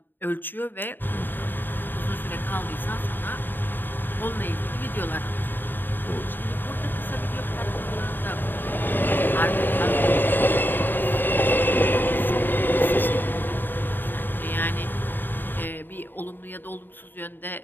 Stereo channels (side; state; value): right; late; 0.093 ms